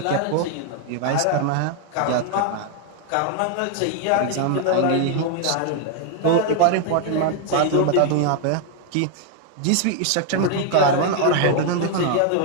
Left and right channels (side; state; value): both; different; correlation 0.00